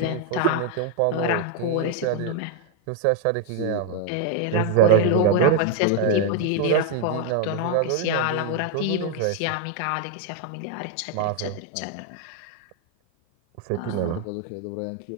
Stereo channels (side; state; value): both; different; correlation 0.01